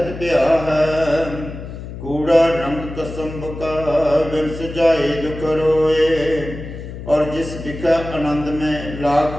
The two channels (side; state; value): left; noise; hum, 10 dB below the sound